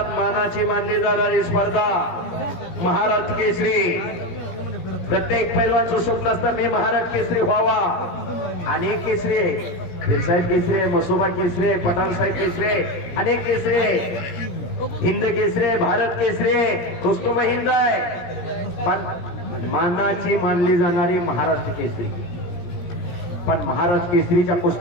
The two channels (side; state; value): right; late; 17 ms